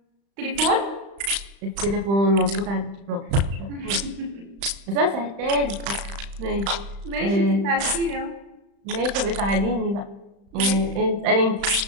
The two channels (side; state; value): left; late; 35 ms